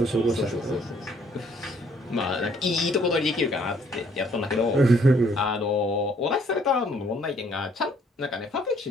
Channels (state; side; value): normal; both; correlation 0.64